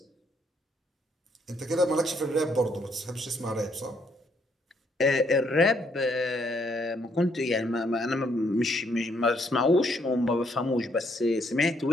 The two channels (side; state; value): both; normal; correlation 0.71